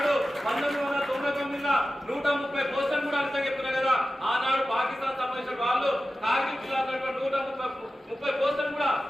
1999 130 పోస్టులు కూడా అంతా చెప్తున్నా కదా. ఆనాడు పాకిస్తాన్ సంబంధించిన వాళ్ళు కార్గిల్ జిల్లాలో 130 పోస్టులు కూడా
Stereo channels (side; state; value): both; normal; correlation 0.94